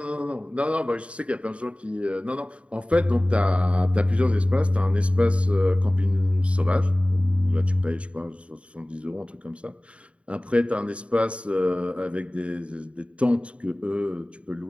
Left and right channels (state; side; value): late; left; 0.061 ms